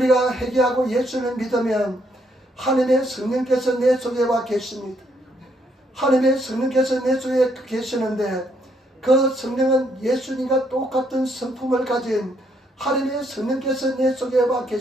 회개하고 예수를 믿으면 하나님의 성령께서 내 속에 와 계십니다. 하나님의 성령께서 내 속에 계시는데 그 성령은 예수님과 똑같은 성품을 가진 하나님의 성령께서 내 속에 와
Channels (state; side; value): normal; both; correlation 0.72